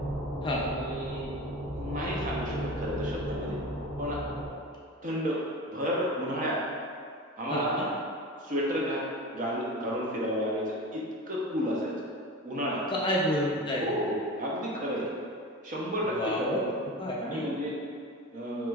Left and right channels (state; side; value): normal; both; correlation 0.31